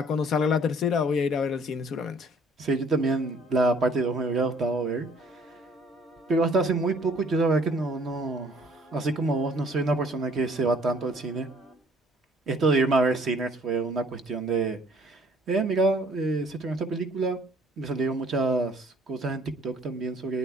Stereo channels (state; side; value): normal; both; correlation 0.58